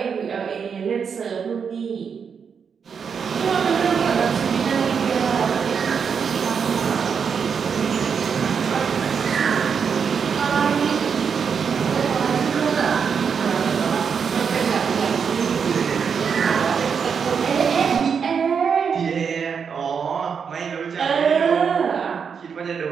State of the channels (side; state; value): left; quieter; 6.5 dB